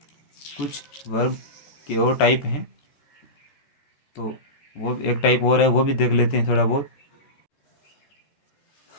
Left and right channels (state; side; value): late; right; 14 ms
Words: कुछ वर्ब के और टाइप हैं, तो वो एक टाइप और है वो भी देख लेते हैं थोड़ा बहुत।